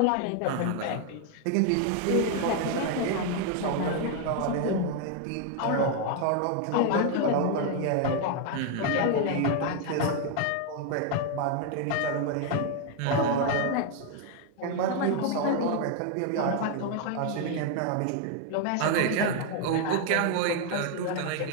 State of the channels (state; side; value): different; both; correlation 0.00